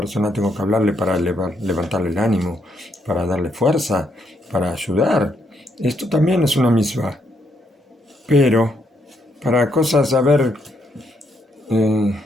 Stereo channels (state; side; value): normal; both; correlation 0.75